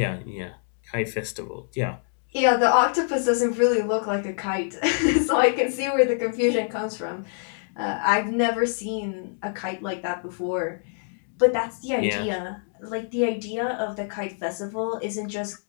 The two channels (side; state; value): right; silent; digital silence